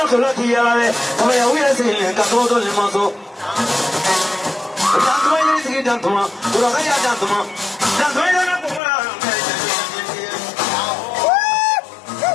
koloti yale, kama ya uya sile katoto limaso. Dantuma yiri sigi dantuma, uraka ya dantuma, dantuma yana kumura.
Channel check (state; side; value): drops out; right; at 8.8 s